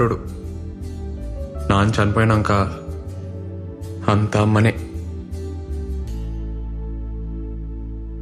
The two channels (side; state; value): both; identical; correlation 1.00